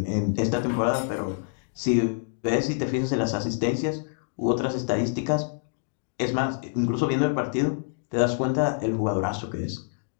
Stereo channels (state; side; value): silent; right; digital silence